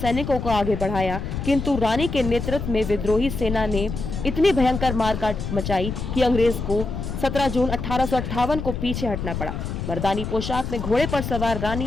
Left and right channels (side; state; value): left; noise; rumble, 5 dB below the sound